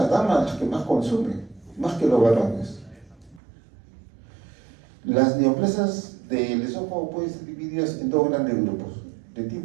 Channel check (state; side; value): drops out; left; at 3.4 s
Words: damas las que más consumen, más que los varones. Las neoplasias del esófago pueden ser divididas en dos grandes grupos: de